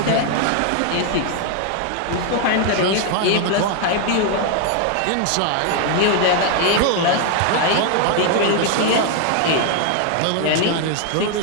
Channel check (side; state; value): both; different; correlation 0.00